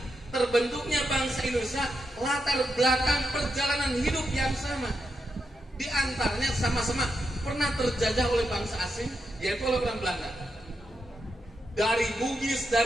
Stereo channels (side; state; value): both; normal; correlation 0.85